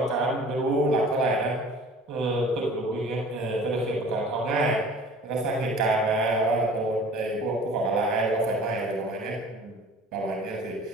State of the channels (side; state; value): both; normal; correlation 0.46